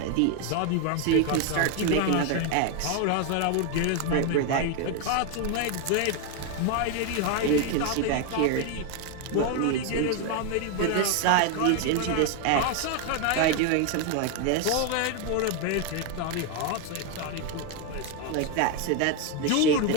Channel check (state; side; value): different; both; correlation 0.01